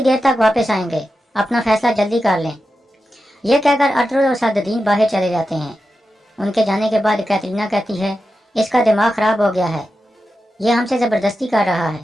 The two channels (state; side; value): normal; both; correlation 0.90